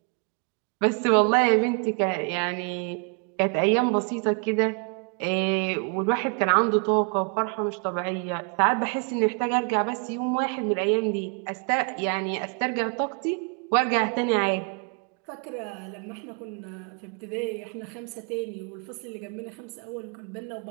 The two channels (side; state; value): left; quieter; 36.7 dB